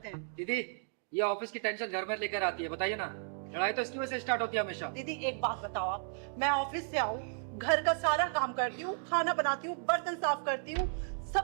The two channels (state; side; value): silent; left; 55 dB below the other